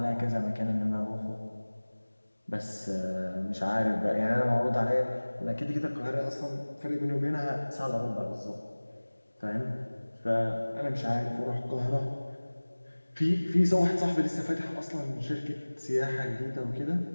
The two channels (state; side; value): inverted; both; correlation -1.00